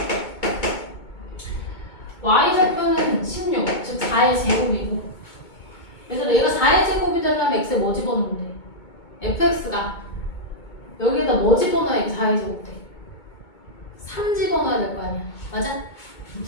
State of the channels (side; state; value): right; late; 2.2 ms